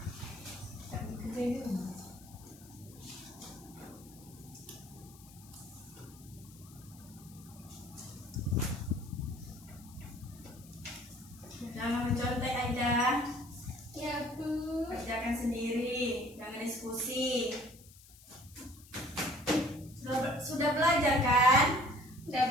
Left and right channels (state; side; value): noise; left; hiss, 22 dB below the sound